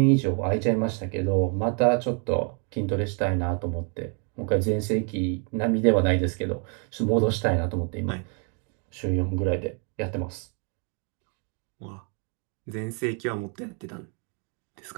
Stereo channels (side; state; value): left; quieter; 39.1 dB